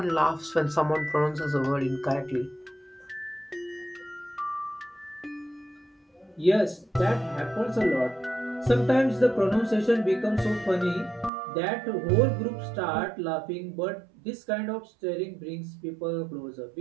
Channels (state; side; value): drops out; left; at 11.3 s